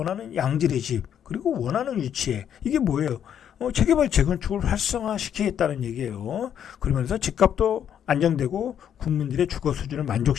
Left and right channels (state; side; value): quieter; right; 9.2 dB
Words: 양질의 집, 그리고 원하는 위치에, 이게 뭐예요? 재개발, 재건축을 활성화시키겠다는 얘기예요. 그러면서 집값도 안정되고 국민들의 주거 수준을